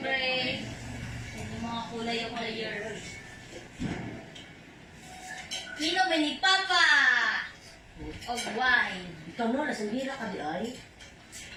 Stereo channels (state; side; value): identical; both; correlation 1.00